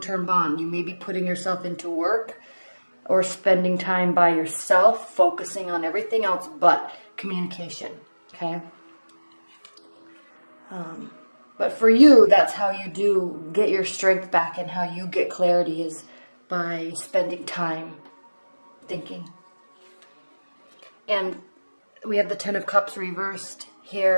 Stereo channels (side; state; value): both; inverted; correlation -1.00